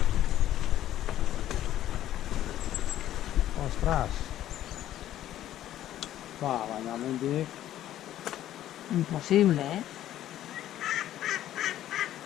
Ostras. Va, bañamente. Imposible, ¿eh?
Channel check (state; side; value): quieter; right; 12.6 dB